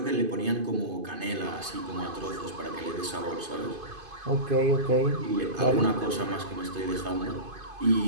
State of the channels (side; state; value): left; late; 2.5 ms